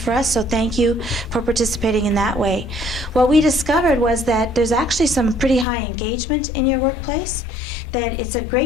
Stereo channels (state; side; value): drops out; right; at 5.7 s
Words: us, so thank you for participating in that way. What we discovered was that there's actually some pretty high engagement in your workplace, that it's a